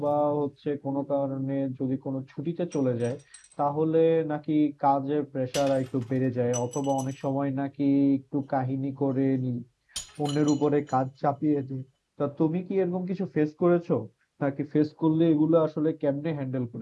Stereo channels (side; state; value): both; identical; correlation 1.00